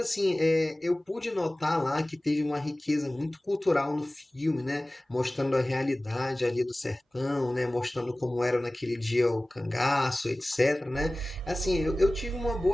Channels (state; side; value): normal; both; correlation 0.98